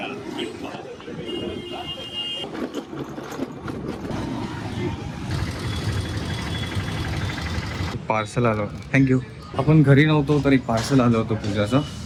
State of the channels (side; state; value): both; identical; correlation 1.00